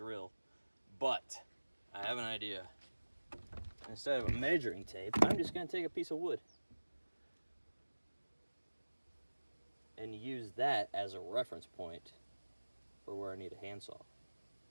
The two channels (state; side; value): inverted; both; correlation -1.00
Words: But I have an idea. Instead of a measuring tape, I'm just gonna take a piece of wood and use that as a reference point for where I need a handsaw.